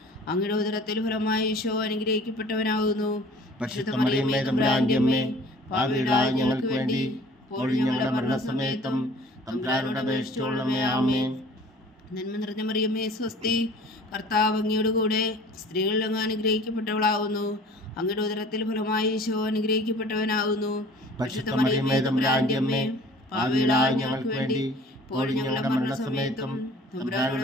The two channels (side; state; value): both; normal; correlation 0.48